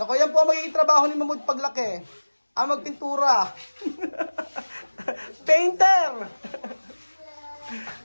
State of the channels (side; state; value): both; inverted; correlation -1.00